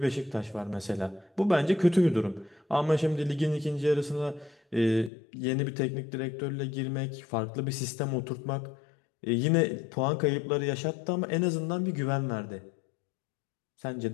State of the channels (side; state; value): right; drops out; at 5.1 s